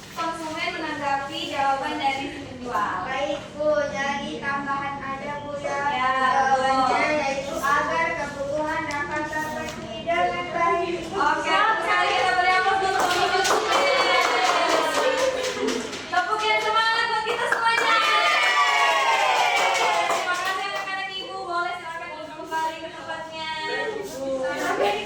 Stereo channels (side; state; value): both; identical; correlation 1.00